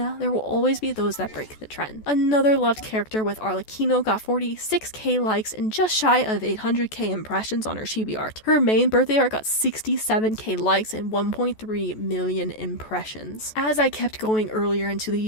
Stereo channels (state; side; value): late; right; 14 ms